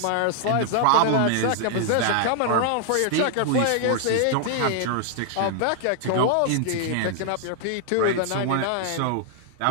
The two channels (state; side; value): different; both; correlation 0.00